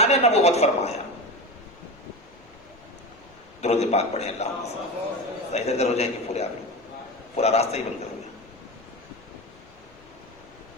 نبوت فرمایا، درود پاک پڑھیں اللہم صلی، ادھر ادھر ہو جائیں گے پورے، آپ پورا راستہ ہی بند کر دیں۔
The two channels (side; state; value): left; noise; rumble, 27 dB below the sound